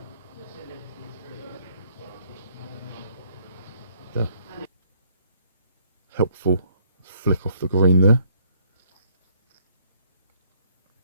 Yeah. Helpful flick off the green there.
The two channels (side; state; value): both; inverted; correlation -0.66